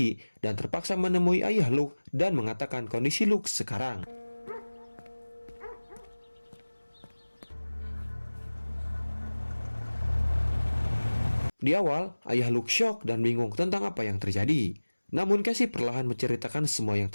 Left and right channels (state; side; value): inverted; both; correlation -1.00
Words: dan terpaksa menemui ayah Luke dan mengatakan kondisi Luke sekarang. Di awal, ayah Luke syok dan bingung tentang apa yang terjadi. Namun Cassie perlahan menceritakan semua yang